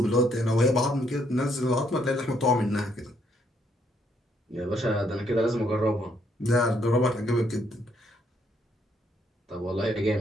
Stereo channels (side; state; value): both; normal; correlation 0.71